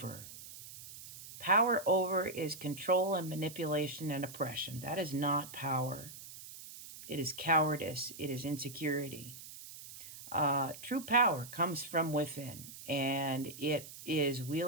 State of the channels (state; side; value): noise; right; hiss, 14 dB below the sound